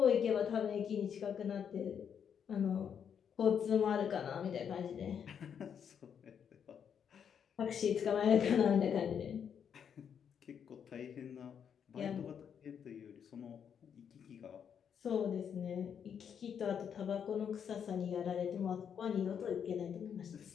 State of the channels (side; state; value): right; quieter; 7.8 dB